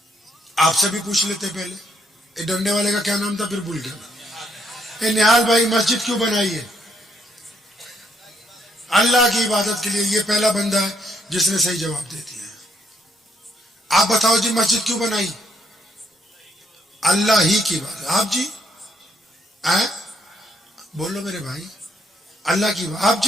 آپ سے بھی پوچھ لیتے پہلے، یہ ڈنڈے والے کا کیا نام تھا پھر بھول گیا، نہال بھائی مسجد کیوں بنائی ہے؟ اللہ کی عبادت کے لیے۔ یہ پہلا بندہ ہے جس نے صحیح جواب دے دیا۔ آپ بتاؤ جی مسجد کیوں بنائی؟ اللہ ہی کی بات۔ آپ جی بولو میرے بھائی، اللہ کی بات۔ آپ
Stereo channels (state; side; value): normal; both; correlation 0.73